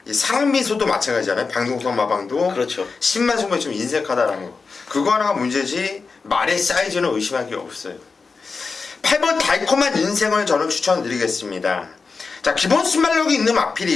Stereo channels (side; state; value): right; quieter; 4.6 dB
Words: 이 사랑미소도 마찬가지잖아요. 방동석 마방도. 그렇죠. 신마승부가 좀 인색하다라는 거. 그거 하나가 문제지 말의 사이즈는 의심할 게 없어요. 8번 달콤한 인생을 저는 추천드리겠습니다. 자, 기본 순발력이 있는